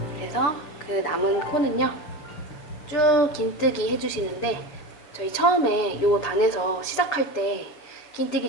그래서 그 남은 코는요, 쭉 긴뜨기 해주시는데, 저희 처음에 요 단에서 시작할 때 긴뜨기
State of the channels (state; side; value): late; right; 6.7 ms